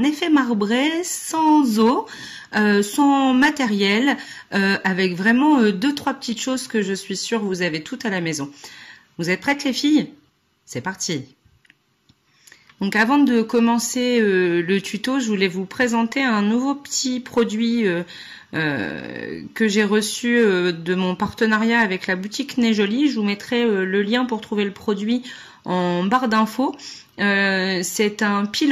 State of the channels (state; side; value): identical; both; correlation 1.00